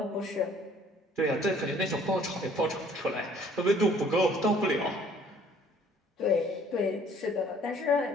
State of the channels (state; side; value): normal; both; correlation 0.57